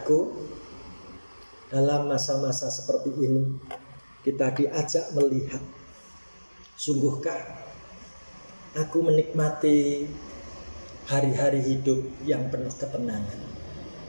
dalam masa-masa seperti ini kita diajak melihat, sungguhkah aku menikmati hari-hari hidup yang penuh ketenangan,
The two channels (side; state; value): both; inverted; correlation -1.00